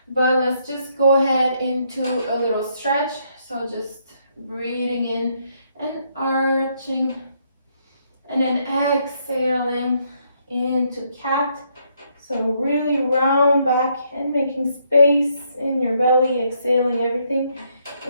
but let's just go ahead into a little stretch. So just breathing in and arching, and then exhaling into cat. So really round back and making space in your belly, exhaling everything,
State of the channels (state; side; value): inverted; both; correlation -0.73